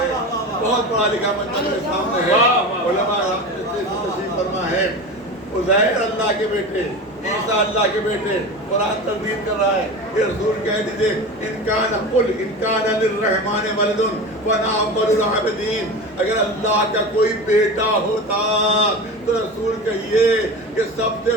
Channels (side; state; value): both; normal; correlation 0.29